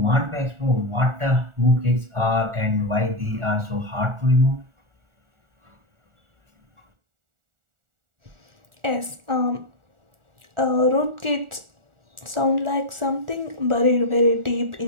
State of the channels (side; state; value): left; late; 1.4 ms